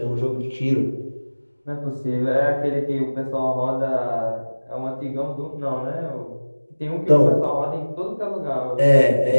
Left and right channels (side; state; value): both; inverted; correlation -1.00